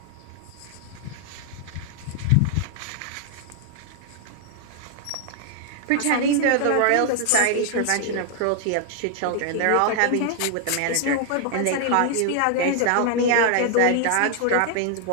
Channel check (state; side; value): different; both; correlation 0.00